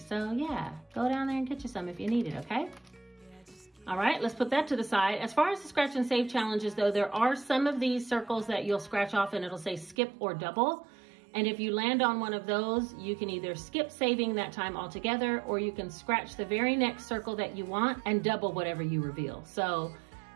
yeah, go down there and get you some if you need it, okay? All right, let's put that to the side. As far as the scratch and save challenges though, there are some of these circles that you'll scratch off and it'll say skip or double. And if you land on one of those, you can either skip saving that time altogether, or you can scratch the very next circle that you want and double whatever you reveal. So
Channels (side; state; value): left; drops out; at 10.0 s